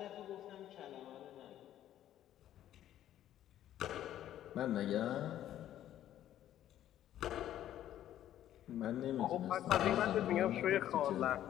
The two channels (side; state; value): right; quieter; 12.0 dB